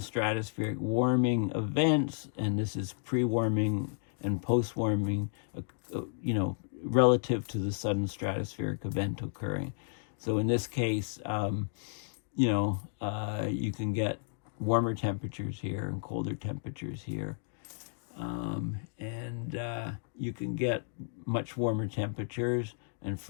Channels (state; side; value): silent; right; digital silence